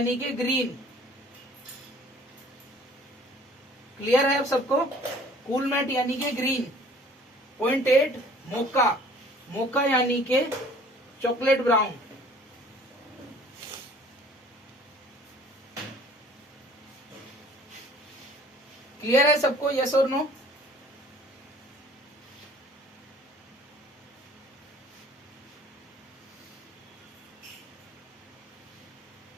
कि ग्रीन। क्लियर है अब सबको? कूल मैट यानी कि ग्रीन। 0.8 मोका, मोका यानी कि चॉकलेट ब्राउन। क्लियर है सबको? यस और नो?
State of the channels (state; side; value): normal; both; correlation 0.52